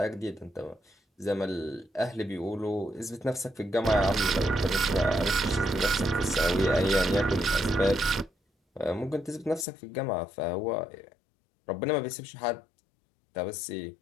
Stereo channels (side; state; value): right; drops out; at 9.7 s